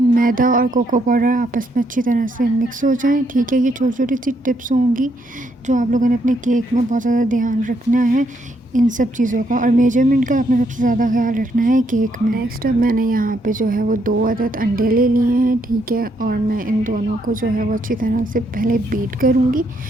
और कोको पाउडर आपस में अच्छी तरह से मिक्स हो जाएं। ठीक है, ये छोटी छोटी सी टिप्स होंगी जो आप लोगों ने अपने केक में बहुत ज़्यादा ध्यान रखना है इन सब चीज़ों का, और मेजरमेंट का आपने सबसे ज़्यादा ख्याल रखना है केक में। नेक्स्ट अब मैंने यहाँ पे जो है वो 2 अदद अंडे ले लिए हैं। ठीक है, और मैं इन दोनों को जो है वो अच्छी तरह से पहले बीट करूँगी।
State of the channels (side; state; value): both; normal; correlation 0.74